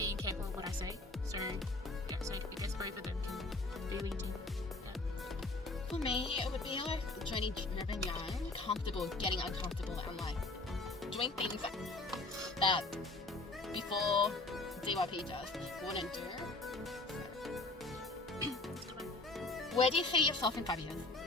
careful of what I say. So yeah, so I guess both of them can be linked in. Yeah. For me, it would be like journey driven young, comfortable, getting uncomfortable, and like doing things that before DYP just wouldn't do. Where do you see yourself in 5 years?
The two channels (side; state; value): right; quieter; 3.2 dB